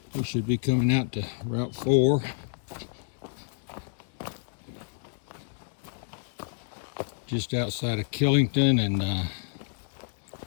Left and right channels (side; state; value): right; silent; digital silence